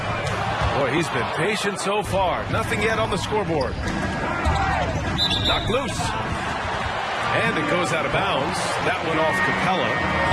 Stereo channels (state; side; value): identical; both; correlation 1.00